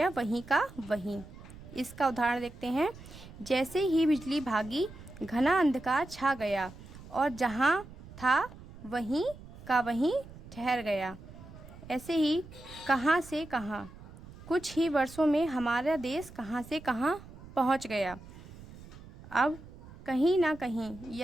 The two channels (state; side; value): noise; right; rumble, 17 dB below the sound